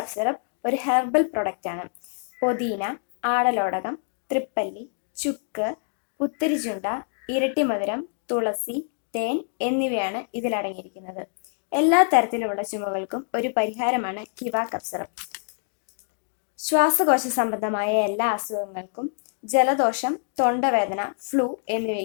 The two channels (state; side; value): silent; right; 61 dB below the other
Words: സിറപ്പ് ഒരു ഹെർബൽ പ്രൊഡക്റ്റാണ്. പൊതീന, ആടലോടകം, തൃപ്പല്ലി, ചുക്ക്, പുത്തരിചുണ്ട, ഇരട്ടിമധുരം, തുളസി, തേൻ എന്നിവയാണ് ഇതിലടങ്ങിയിരിക്കുന്നത്. എല്ലാ തരത്തിലുമുള്ള ചുമകൾക്കും ഒരു പരിഹാരമാണ് കിവ കപ്പ് സിറപ്പ്. ശ്വാസകോശ സംബന്ധമായ എല്ലാ അസുഖങ്ങൾക്കും, ജലദോഷം, തൊണ്ടവേദന, ഫ്ലൂ